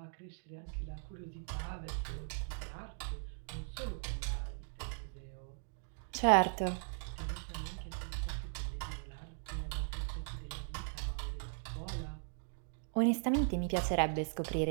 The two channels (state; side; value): silent; left; digital silence